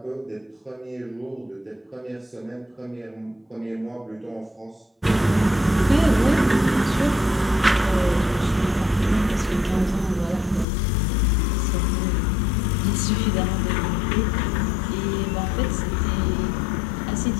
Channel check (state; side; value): drops out; right; at 10.7 s